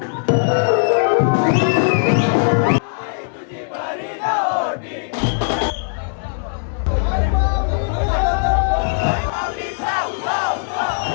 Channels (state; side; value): silent; right; 66 dB below the other